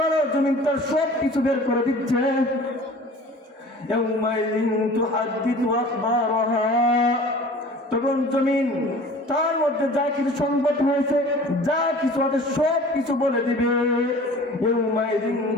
জমিন তার সব কিছু বের করে দিচ্ছে। ইয়াউমাইযিন তুহাদ্দিথু আখবারাহা, তখন জমিন তার মধ্যে যা কিছু সংবাদ হয়েছে, যা কিছু আছে সব কিছু বলে দিবে। ইয়াউমাইযিন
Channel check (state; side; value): normal; both; correlation 0.44